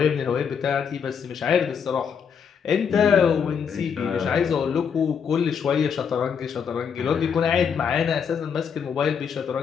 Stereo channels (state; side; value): quieter; right; 7.0 dB